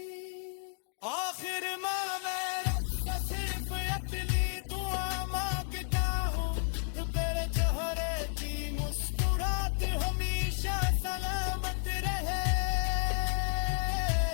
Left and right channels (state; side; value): silent; right; 56 dB below the other